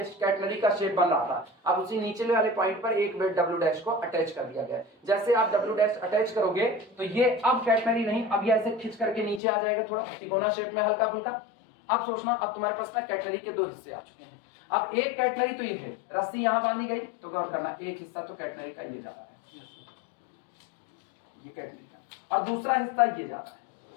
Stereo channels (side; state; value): right; drops out; at 9.4 s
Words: कैटनरी का शेप बन रहा था। अब उसी नीचे वाले पॉइंट पर एक वेट डब्ल्यू डैश को अटैच कर दिया गया। जैसे आप डब्ल्यू डैश अटैच करोगे तो ये अब कैटनरी नहीं, अब ये ऐसे खींच करके नीचे आ जाएगा, थोड़ा तिकोना शेप में हल्का फुल्का। अब सोचना, अब तुम्हारे पास ना कैटनरी के दो हिस्से आ चुके हैं। अब एक कैटनरी तो ये है, रस्सी यहां बांधी गई, तो गौर करना एक हिस्सा तो कैटनरी का ये जा रहा है, ये कैटनरी का, और दूसरा हिस्सा ये जा रहा है।